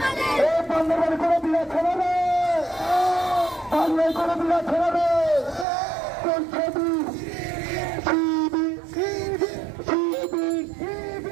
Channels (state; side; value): drops out; left; at 5.7 s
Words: বান্দরবান কোনো বিরাট ছড়াবে, বাংলায় কোনো বিরাট ছড়াবে। কোন ছবি